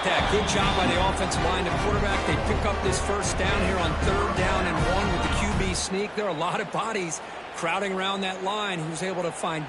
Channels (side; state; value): both; identical; correlation 1.00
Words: that? Good job by the offensive line. The quarterback, they pick up this first down here on 3rd down and 1 with the QB sneak. There are a lot of bodies crowding around that line. He was able to find